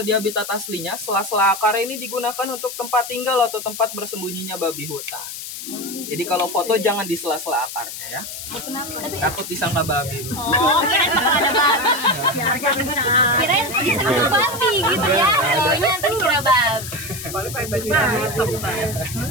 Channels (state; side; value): noise; left; hiss, 9 dB below the sound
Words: di habitat aslinya, sela-sela akar ini digunakan untuk tempat tinggal atau tempat bersembunyinya babi hutan. Jadi kalau foto jangan di sela-sela akarnya ya. Kenapa? Takut disangka babi. Bu. Oh, kirain bakal ada babi. Kirain disangka babi gitu ya. Soalnya nanti kira babi. Paling babi hitam.